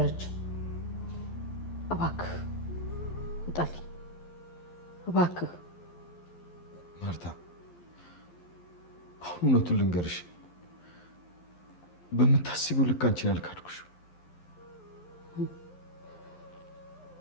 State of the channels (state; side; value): late; right; 11 ms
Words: እባክህ ውጣልኝ፣ እባክህ። ማርታ አሁን እውነቱን ልንገርሽ፣ በምታስቢው ልክ አንቺን አልካድኩሽ።